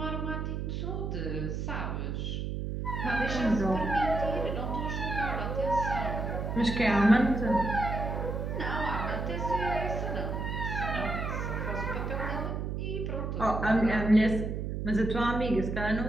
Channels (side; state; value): right; noise; hum, 3 dB below the sound